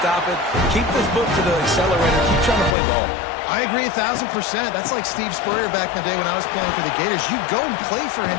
it. Keep the foot to the accelerator. Keep trying to play ball. I agree 1,000%. That's like Steve Spurrier back in the day when I was playing for the Gators. You go and play for him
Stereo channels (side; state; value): right; drops out; at 2.8 s